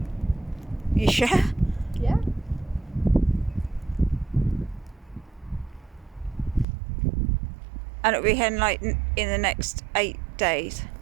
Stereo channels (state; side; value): drops out; left; at 6.7 s